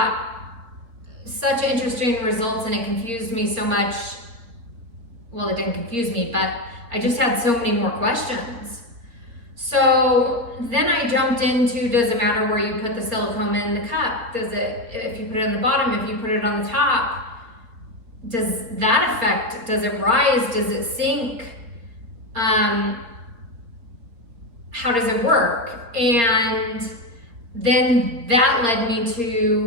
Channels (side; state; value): left; late; 4.1 ms